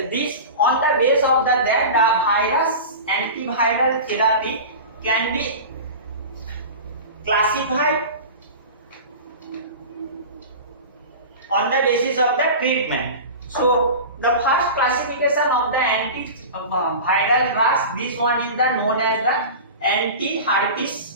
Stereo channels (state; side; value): inverted; both; correlation -0.31